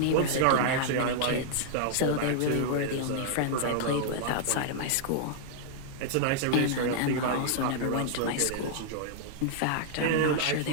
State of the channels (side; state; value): both; different; correlation -0.01